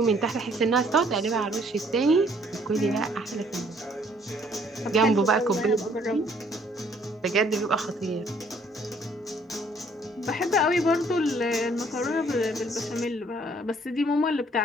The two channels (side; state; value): both; normal; correlation 0.62